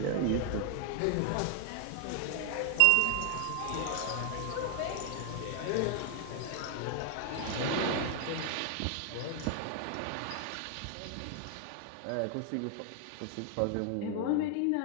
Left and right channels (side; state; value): both; different; correlation 0.00